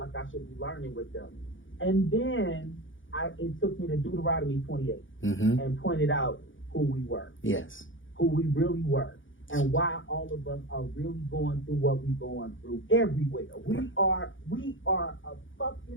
I should be learning with them. And then it took me to Deuteronomy 28 and pointed out who we were. Yes. Who we really were. And why all of us are really going through what we're going through everywhere. We are a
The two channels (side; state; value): right; late; 0.57 ms